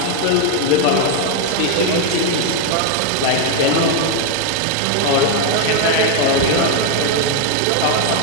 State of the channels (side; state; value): both; different; correlation 0.01